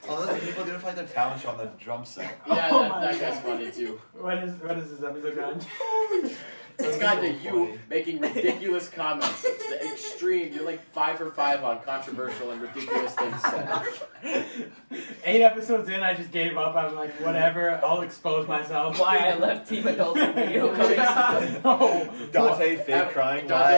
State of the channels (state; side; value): inverted; both; correlation -1.00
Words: Oh, those people didn't find their talent show on the drum set. Yeah, Oh that my guy's God. funny too. What is this episode on? It's got to so you funny. making ridiculous comments. The extreme. You're like 5 for 5 on controversial and ridiculous things said. 8 episodes in, I just gave up. I'm like, whatever. I'll expose myself. Why I left Team Adulting video coming. No. Dante fake crying. Dante why I